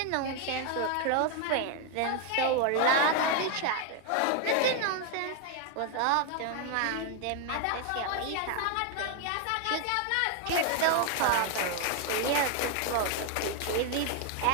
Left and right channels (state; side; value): different; both; correlation 0.01